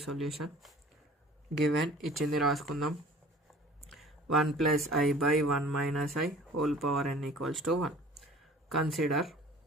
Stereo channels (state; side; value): normal; both; correlation 0.47